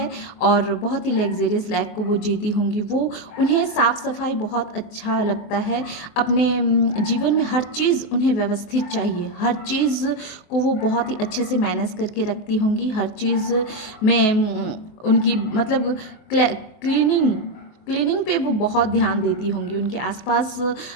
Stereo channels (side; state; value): right; late; 23 ms